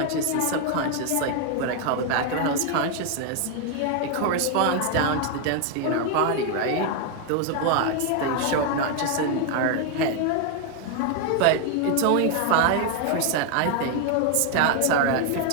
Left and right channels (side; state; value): both; different; correlation 0.00